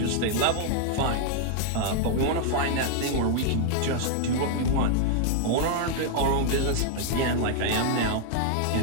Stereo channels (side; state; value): both; different; correlation -0.01